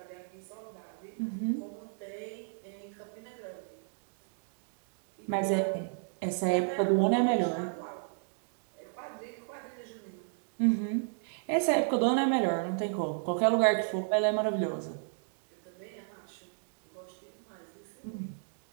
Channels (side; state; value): left; silent; digital silence